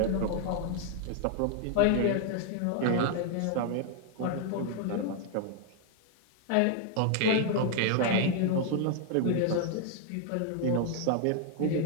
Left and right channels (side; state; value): both; different; correlation 0.00